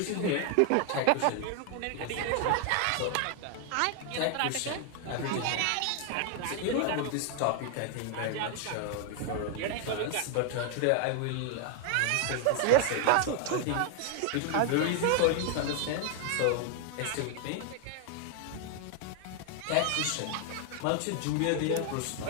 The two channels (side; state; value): both; different; correlation 0.00